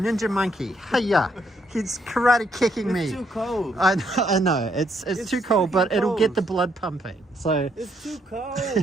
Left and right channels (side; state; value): both; normal; correlation 0.73